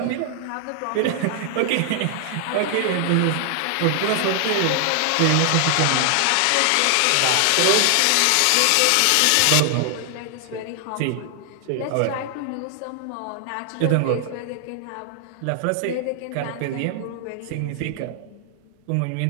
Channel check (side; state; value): both; different; correlation 0.00